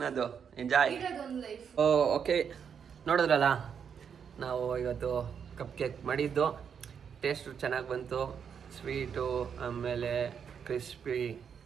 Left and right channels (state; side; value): quieter; left; 7.3 dB